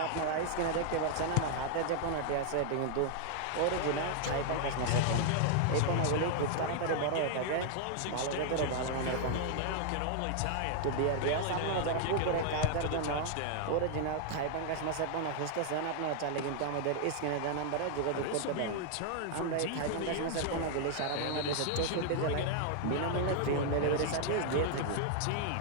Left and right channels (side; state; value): both; different; correlation 0.00